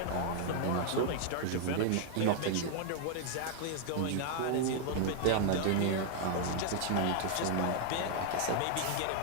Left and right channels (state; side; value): different; both; correlation 0.00